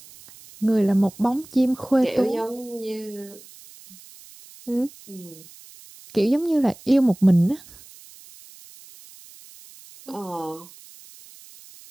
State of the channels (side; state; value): right; noise; hiss, 21 dB below the sound